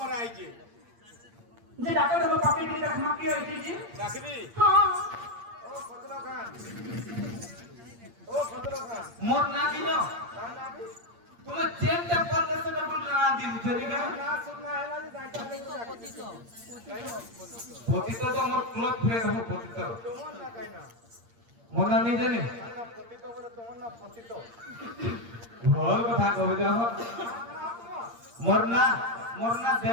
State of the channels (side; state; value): left; late; 8.7 ms